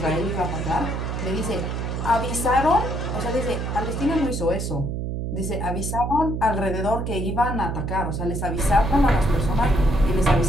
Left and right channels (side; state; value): right; noise; hum, 3 dB below the sound